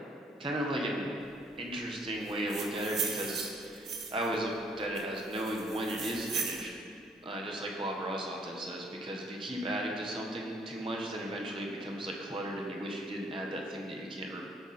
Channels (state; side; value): normal; both; correlation 0.64